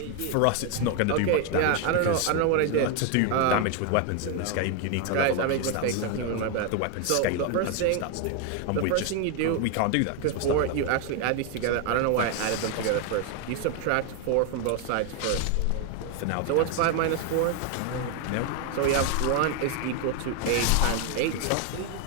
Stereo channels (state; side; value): different; both; correlation 0.01